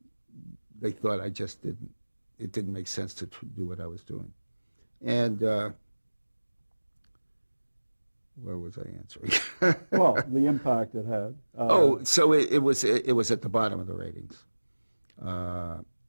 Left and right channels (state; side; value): inverted; both; correlation -1.00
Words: They thought it didn't make sense to do what I was doing. And where was I answering? Well, the impact it had. So it was at the bottom of the ratings.